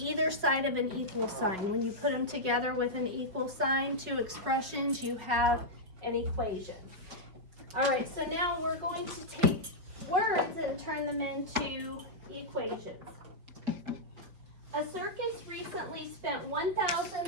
side of an equal sign. When you put them together with an equal sign, two expressions, you have an equation. All right, so now we're going to take words and turn them into equations. A circus recently spent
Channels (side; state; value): left; late; 5.2 ms